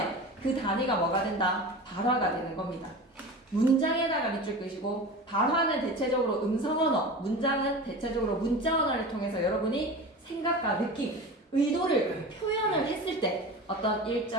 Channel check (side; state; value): both; normal; correlation 0.32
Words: 그 단위가 뭐가 된다? 발화가 되는 겁니다. 문장에다가 밑줄 끄시고 발화는 대체적으로 음성 언어, 문장은 대체적으로 문자 언어를 통해서 여러분이 생각과 느낌, 의도를 표현을 했을 때 어떤